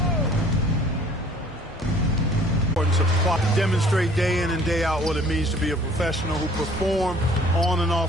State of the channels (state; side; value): normal; both; correlation 0.54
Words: To demonstrate day in and day out what it means to be a professional who perform on and